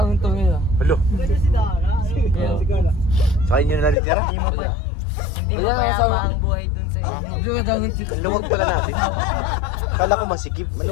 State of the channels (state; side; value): drops out; right; at 4.0 s